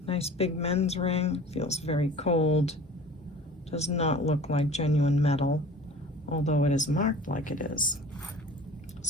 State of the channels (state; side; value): normal; both; correlation 0.43